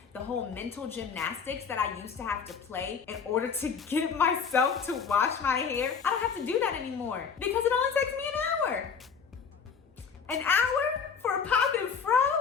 The whole mental gymnastics that I used to have to play in order to get myself to wash my hair, I don't have to do that anymore because it only takes me an hour. An hour for a pop and fro?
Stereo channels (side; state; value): right; quieter; 6.3 dB